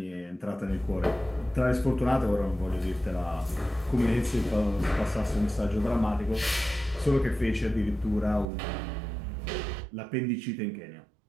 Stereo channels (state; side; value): drops out; left; at 8.5 s